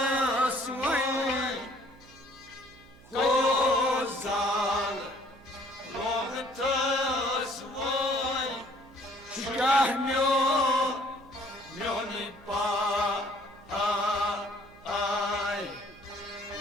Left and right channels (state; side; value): noise; right; hum, 23 dB below the sound